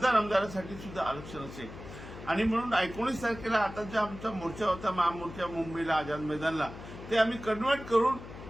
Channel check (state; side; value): noise; left; hum, 13 dB below the sound